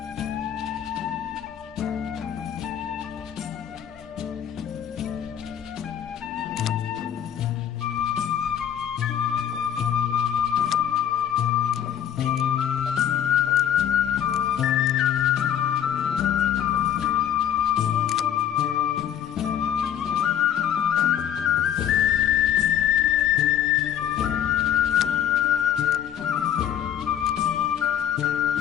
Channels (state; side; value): quieter; right; 9.9 dB